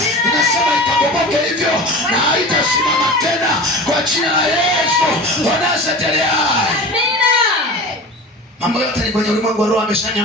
Ninasema ikabomoke hivyo na haitasimama tena kwa jina la Yesu wa Nazareti aliye hai. Mambo yote ni kwenye ulimwengu wa roho,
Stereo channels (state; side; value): normal; both; correlation 0.34